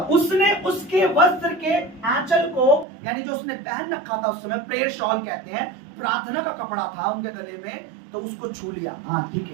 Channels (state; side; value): drops out; left; at 2.9 s